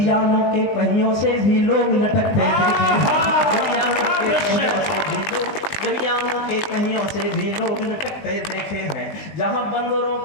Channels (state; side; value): late; right; 19 ms